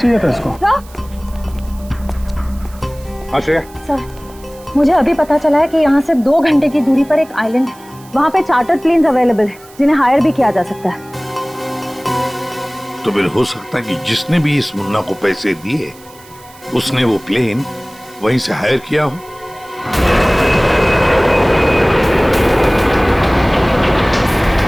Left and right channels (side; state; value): right; noise; hiss, 24 dB below the sound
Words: था इसको। हाँ श्रेया। सर, मुझे अभी पता चला है कि यहाँ से 2 घंटे की दूरी पर एक आइलैंड है। वहाँ पे चार्टर्ड प्लेन्स अवेलेबल है, जिन्हें हायर भी किया जा सकता है। तो फिर हो सकता है कि जिसने भी इस मुन्ना को पैसे दिए, उसने वो प्लेन वहीं से हायर किया हो।